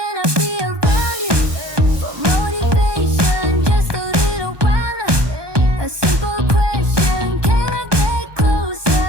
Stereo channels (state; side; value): late; left; 1.2 ms